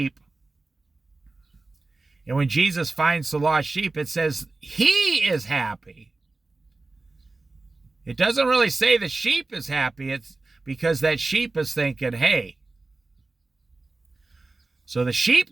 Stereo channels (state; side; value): quieter; left; 3.4 dB